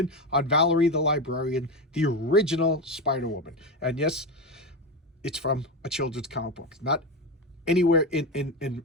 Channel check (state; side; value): normal; both; correlation 0.17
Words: on Valerie the Librarian, the original Spider-Woman. And yes, it's from a children's comic book, not anywhere in